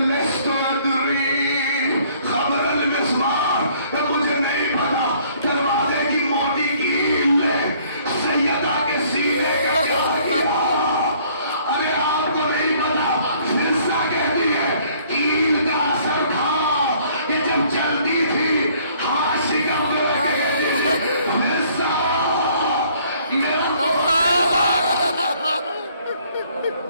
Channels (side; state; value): both; inverted; correlation -0.60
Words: ادری خبر المسمار، مجھے نہیں پتا دروازے کی موٹی کیل نے سیدہ کے سینے کا کیا کیا. ارے آپ کو نہیں پتا فرشتہ کہتی ہے کیل کا اثر تھا کہ جب چلتی تھی ہاتھ شکم لگے فرشتہ میرا